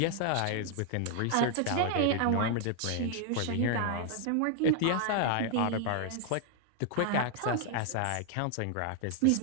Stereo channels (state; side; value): different; both; correlation 0.00